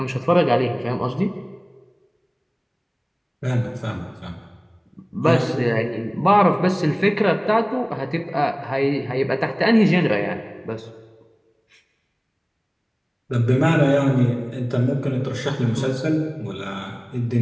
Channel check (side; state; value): both; identical; correlation 1.00